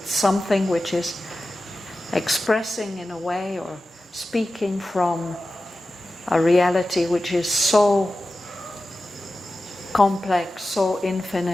something which is expressing in a way or speaking from a reality which is so complex, so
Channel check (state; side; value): normal; both; correlation 0.94